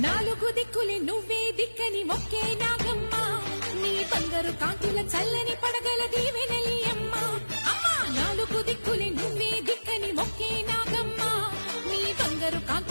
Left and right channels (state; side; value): inverted; both; correlation -1.00